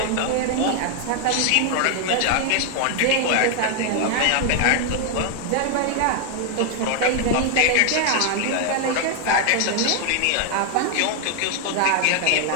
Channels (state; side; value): different; both; correlation 0.00